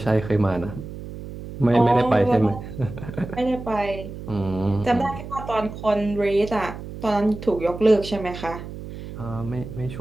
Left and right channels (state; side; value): noise; right; hum, 11 dB below the sound